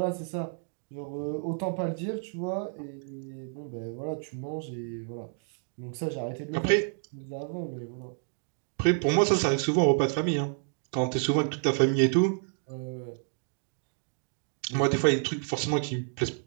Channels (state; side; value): silent; left; digital silence